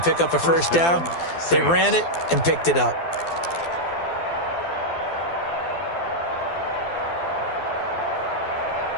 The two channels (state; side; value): late; right; 12 ms